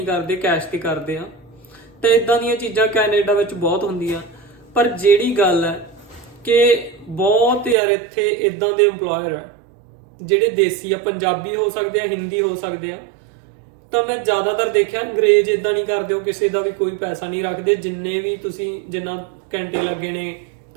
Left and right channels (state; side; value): drops out; left; at 7.8 s